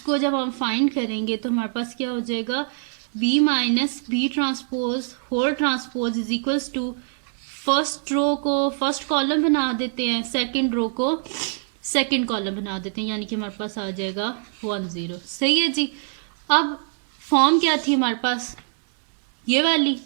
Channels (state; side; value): silent; left; digital silence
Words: जब हम फाइंड करेंगे तो हमारे पास क्या हो जाएगा, B minus B transpose whole transpose is equals to, first row को फर्स्ट कॉलम बना देते हैं, सेकंड रो को सेकंड कॉलम बना देते हैं, यानी कि हमारे पास आ जाएगा 1 0। सही है जी, अब फॉर्म क्या थी हमारे पास, ये वाली,